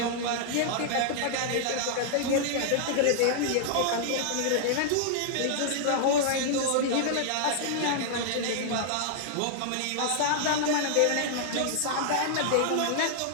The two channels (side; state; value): both; different; correlation -0.01